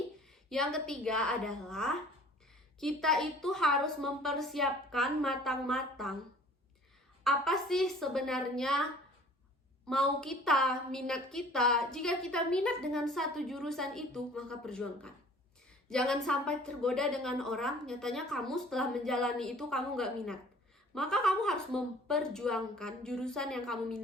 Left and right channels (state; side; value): normal; both; correlation 0.50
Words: Yang ketiga adalah kita itu harus mempersiapkan matang-matang. Apa sih sebenarnya mau kita, minat kita? Jika kita minat dengan satu jurusan itu, maka perjuangkan. Jangan sampai tergoda dengan orang, nyatanya kamu setelah menjalani itu kamu nggak minat. Maka kamu harus memperjuangkan jurusan yang kamu